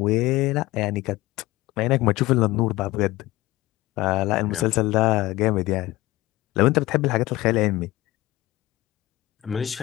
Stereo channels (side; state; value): right; quieter; 18.1 dB